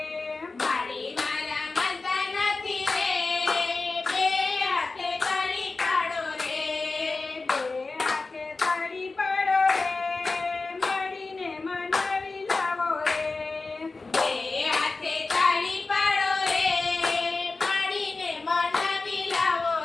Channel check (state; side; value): quieter; right; 3.7 dB